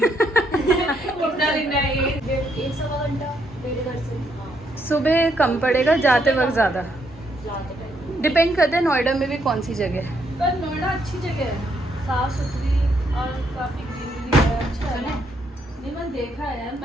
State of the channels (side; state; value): both; normal; correlation 0.75